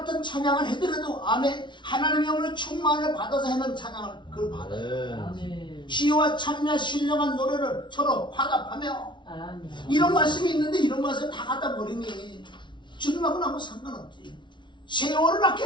찬양을 해더라도 아멘 하나님의 영을 충만을 받아서 하는 찬양을 그걸 받아요. 시와 찬미와 신령한 노래를 서로 화답하며. 이런 말씀이 있는데 이런 말씀 다 갖다 버리니 주님하고는 아무 상관없지. 세월을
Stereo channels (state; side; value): late; right; 0.23 ms